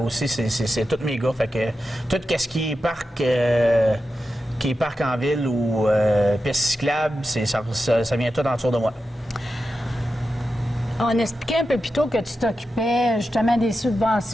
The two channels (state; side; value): normal; both; correlation 0.90